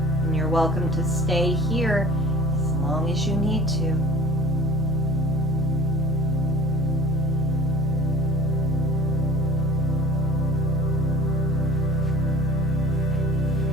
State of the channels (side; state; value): both; normal; correlation 0.45